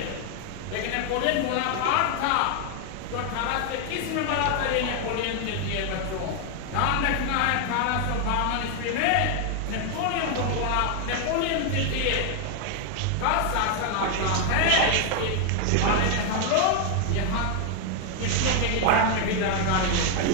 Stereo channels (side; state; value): both; different; correlation 0.00